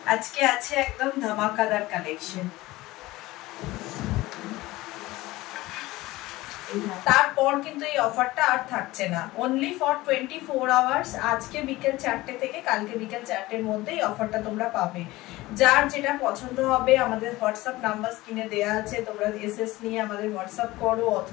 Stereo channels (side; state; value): right; quieter; 18.9 dB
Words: আজকে আছে একদম ধামাকাদার কালেকশন। তারপর কিন্তু এই অফারটা আর থাকছে না, অনলি ফর 24 আওয়ার্স। আজকে বিকেল 4টে থেকে কালকে বিকেল 4টের মধ্যে এই অফারটা তোমরা পাবে। যার যেটা পছন্দ হবে আমাদের হোয়াটসঅ্যাপ নাম্বার স্ক্রিনে দেওয়া আছে, তোমরা এসএস নিয়ে আমাদের হোয়াটসঅ্যাপ করো